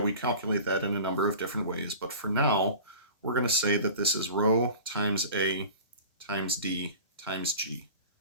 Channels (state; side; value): inverted; both; correlation -0.39